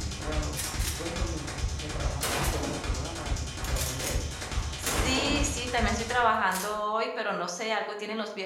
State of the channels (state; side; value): identical; both; correlation 1.00